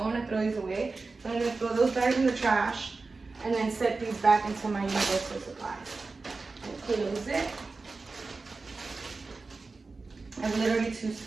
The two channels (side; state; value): left; quieter; 3.9 dB